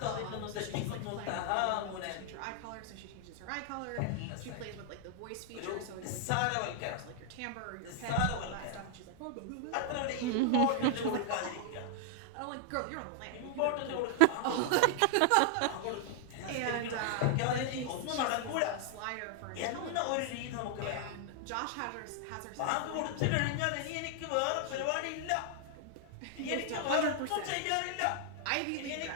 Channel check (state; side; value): different; both; correlation 0.00